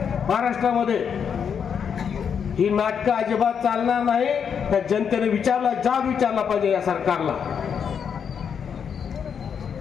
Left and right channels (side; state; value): right; quieter; 7.2 dB